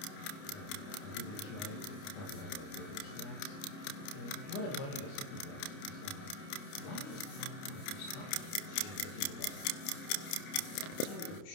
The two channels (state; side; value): late; right; 29 ms